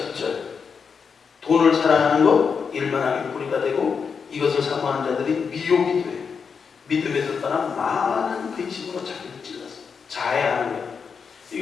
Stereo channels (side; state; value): right; quieter; 6.0 dB